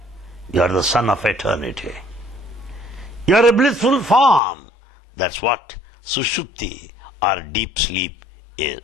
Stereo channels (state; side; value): drops out; right; at 4.4 s